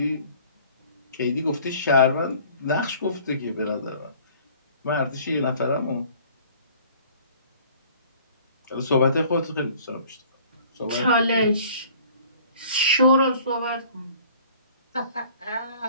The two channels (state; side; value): inverted; both; correlation -0.51